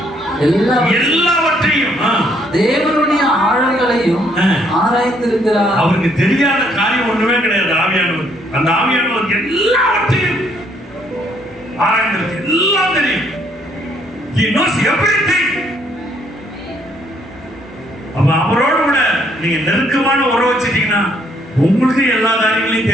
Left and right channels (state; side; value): normal; both; correlation 0.68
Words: எல்லாவற்றையும் தேவனுடைய ஆழங்களையும் ஆராய்ந்திருக்கிறார். அவருக்கு தெரியாத காரியம் ஒண்ணுமே கிடையாது. ஆவியானவர், அந்த ஆவியானவர் எல்லாவற்றையும் ஆராய்ந்திருக்கு. எல்லாம் தெரியும். He knows everything. அப்ப அவரோடு கூட நீங்க நெருக்கமான உறவு வச்சிட்டீங்கன்னா உங்களுக்கு எல்லா காரியங்களையும்